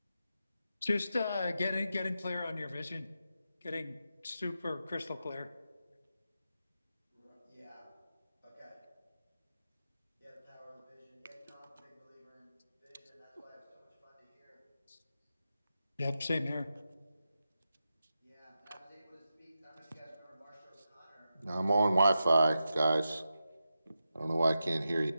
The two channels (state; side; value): inverted; both; correlation -0.90